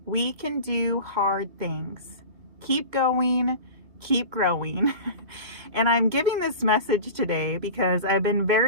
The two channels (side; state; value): left; late; 2.1 ms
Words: We can do hard things. Keep going, keep growing. And I'm giving this message today because I've been